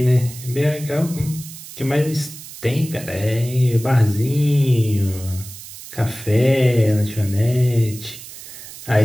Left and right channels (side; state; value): right; noise; hiss, 15 dB below the sound